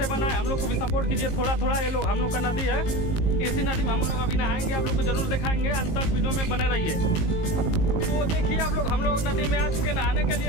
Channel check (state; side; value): late; right; 19 ms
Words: बनाए, हम लोग को भी सपोर्ट कीजिए थोड़ा थोड़ा। ये लोग हम लोग का नदी है, इसी नदी में हम लोग अभी नहाएंगे, आप लोग को जरूर दिखाएंगे, अंत तक वीडियो में बने रहिए। तो देखिए आप लोग, हम लोग नदी में आ चुके नहाने के